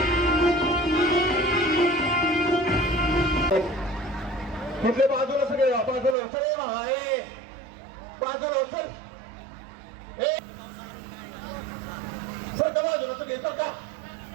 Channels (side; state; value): left; drops out; at 6.2 s